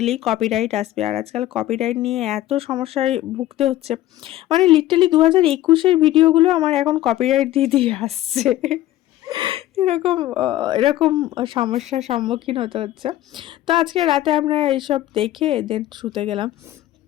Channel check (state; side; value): quieter; right; 14.5 dB